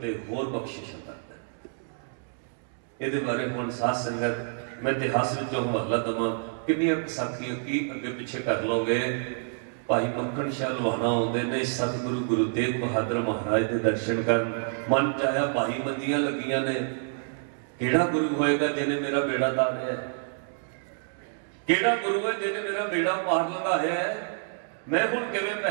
होर बख्शिश करदा है। इहदे बारे हुण साध संगत मैं इतिहास विचों हवाला देवां, कितनी साखियां की अगे पिछे कर लोगे। भाई मक्खन शाह लुहाना आउंदे ने सतगुरु गुरु तेग बहादुर महाराज के दर्शन करन। मन चाया भाई मंदियां लगियां ने, केड़ा गुरु होएगा जिन्हें मेरा बेड़ा तारिया है? केड़ा गुरु है जिन्हें मेरा बेड़ा पार लगाया है? मैं हुण किवें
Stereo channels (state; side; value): silent; left; digital silence